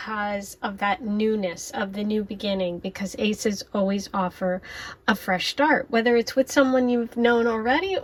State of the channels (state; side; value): identical; both; correlation 1.00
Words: of that newness of the new beginning, because aces always offer a fresh start, whether it's with someone you've known already